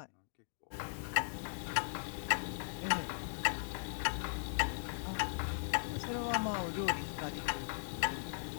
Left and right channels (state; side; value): silent; right; digital silence